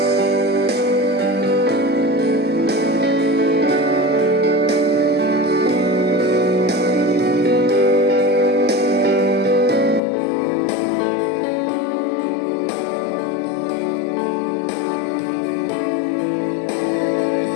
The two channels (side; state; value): right; drops out; at 10.0 s